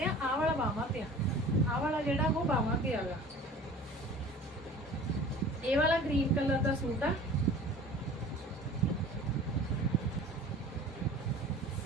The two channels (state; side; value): normal; both; correlation 0.43